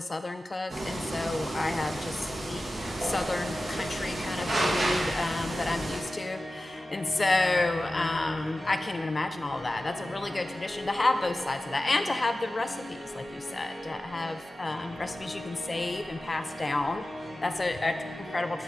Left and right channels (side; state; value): both; normal; correlation 0.95